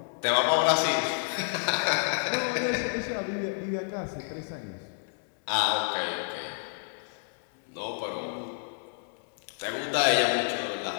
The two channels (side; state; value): right; silent; 56 dB below the other